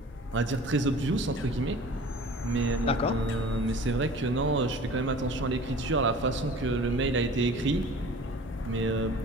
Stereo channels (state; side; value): normal; both; correlation 0.44